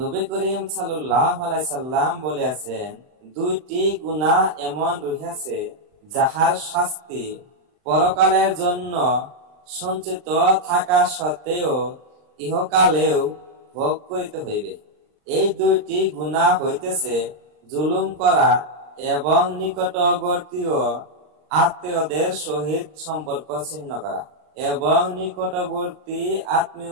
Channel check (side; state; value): left; late; 39 ms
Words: করিম সাল্লাল্লাহু আলাইহি সাল্লাম বলেছেন, দুইটি গুনাহ এমন রহিয়াছে যাহার শাস্তি পরকালের জন্য সঞ্চিত থাকা সত্ত্বেও ইহকালেও ভোগ করিতে হইবে। এই দুইটি গুনাহ হইতেছে জুলুম করা এবং নিকটবর্তী আত্মীয়দের সহিত সম্পর্ক